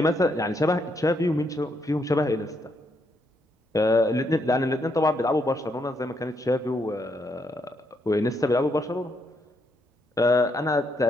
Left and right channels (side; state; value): both; normal; correlation 0.76